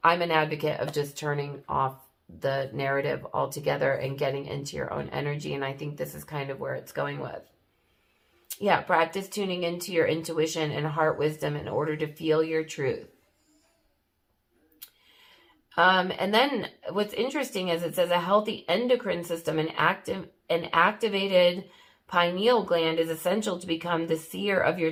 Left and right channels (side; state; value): both; identical; correlation 1.00